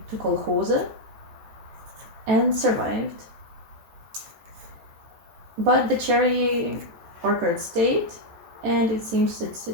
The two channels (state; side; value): late; left; 13 ms